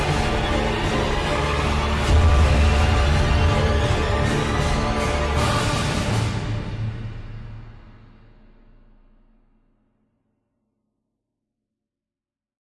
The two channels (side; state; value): both; identical; correlation 1.00